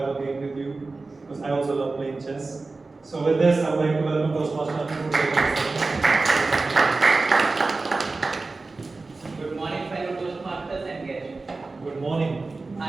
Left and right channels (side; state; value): left; quieter; 3.6 dB